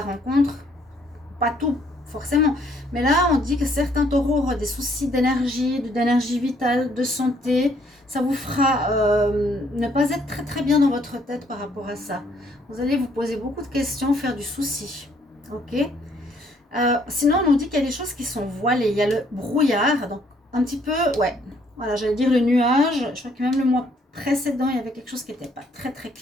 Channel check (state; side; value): normal; both; correlation 0.66